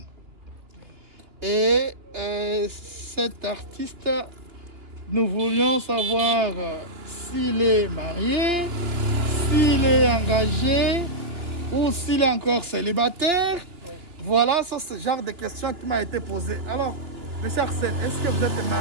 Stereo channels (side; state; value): left; late; 3.0 ms